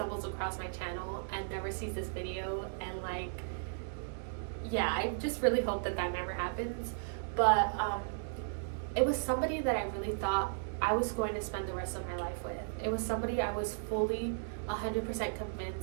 across my channel and never sees this video, and like, yeah, I just really hope that never happens. But it was somebody that I really thought I was going to spend the rest of my life with. It was somebody I was fully 100%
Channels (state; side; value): silent; left; digital silence